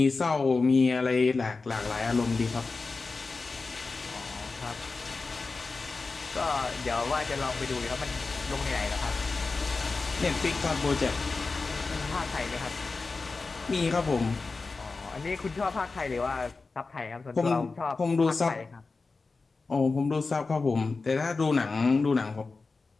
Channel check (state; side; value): quieter; right; 4.0 dB